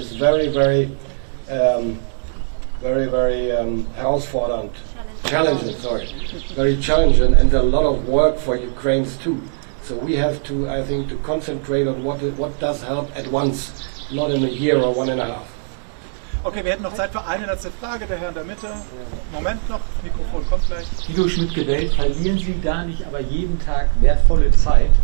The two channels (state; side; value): silent; left; 66 dB below the other